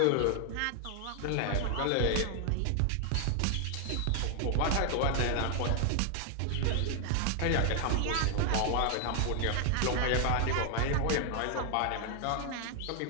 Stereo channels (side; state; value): both; different; correlation 0.00